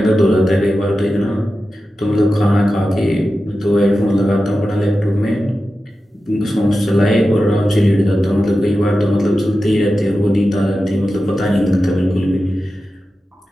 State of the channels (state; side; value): normal; both; correlation 0.93